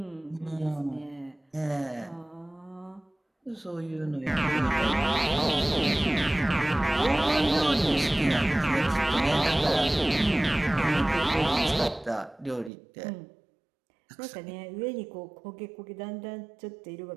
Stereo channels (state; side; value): drops out; left; at 12.7 s